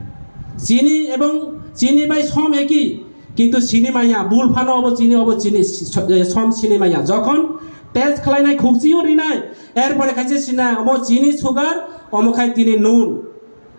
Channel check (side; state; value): both; inverted; correlation -1.00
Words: চিনি এবং চিনি ভাই সম একই কিন্তু চিনি মাইয়া বুল ফানো অব চিনি সম চিনি মাইয়া যখন টেস্ট খালাইনাই খুকজিও রিনাই এরপরে খাইছে চিনা অব চিনি সুগার অমখাই তিনি নুন